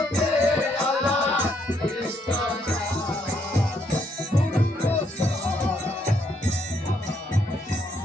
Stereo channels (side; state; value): both; normal; correlation 0.73